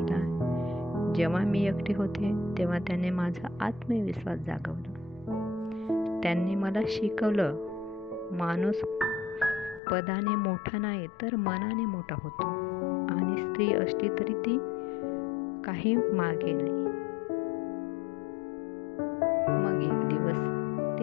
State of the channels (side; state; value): right; drops out; at 9.8 s